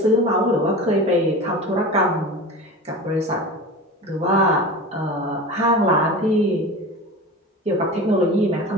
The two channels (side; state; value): both; normal; correlation 0.32